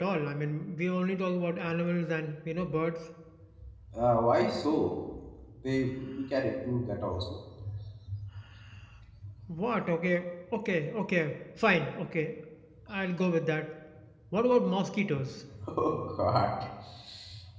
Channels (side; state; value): both; identical; correlation 1.00